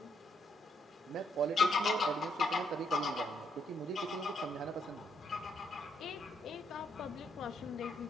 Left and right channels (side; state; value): both; normal; correlation 0.75